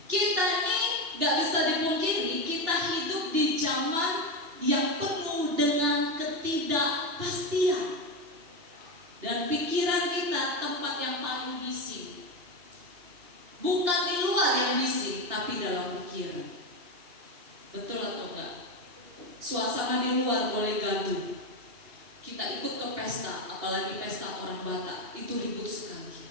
kita ini gak bisa dipungkiri, kita hidup di zaman yang penuh dengan ketidakpastian. Dan pikiran kita tempat yang paling bising. Bukan di luar yang bising, tapi dalam pikiran. Betul atau enggak? Suasana di luar boleh gaduh. Kita ikut ke pesta, apalagi pesta orang Batak, itu ribut sekali.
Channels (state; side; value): late; left; 2.9 ms